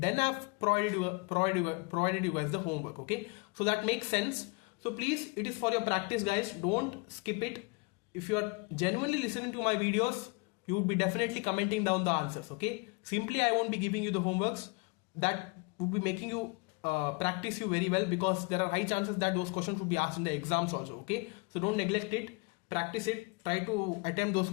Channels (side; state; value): right; quieter; 29.6 dB